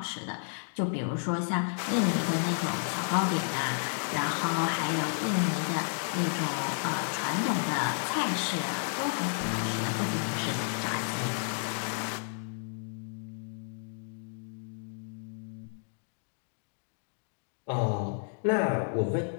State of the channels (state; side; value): silent; right; digital silence